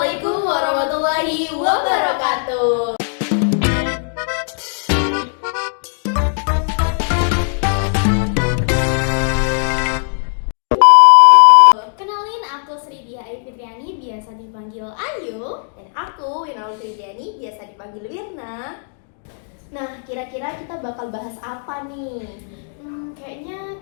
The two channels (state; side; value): silent; right; 63 dB below the other